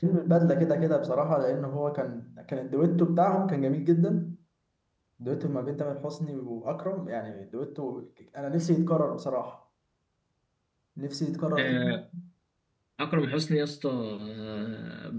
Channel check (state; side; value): identical; both; correlation 1.00